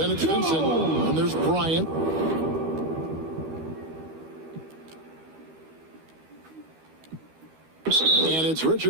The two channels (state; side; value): late; left; 13 ms